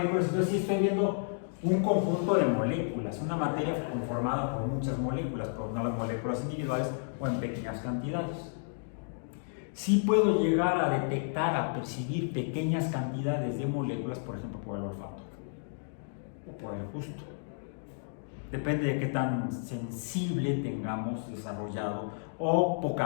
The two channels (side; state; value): right; silent; digital silence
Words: Entonces sí estoy viendo un conjunto de moléculas, una materia conformada por muchas moléculas, pero no las moléculas individuales o en pequeñas cantidades. Sí puedo llegar a detectar, a percibir pequeñas cantidades de moléculas, por ejemplo, por el olfato o por el gusto. Depende de qué tan sensible tengamos desarrollado o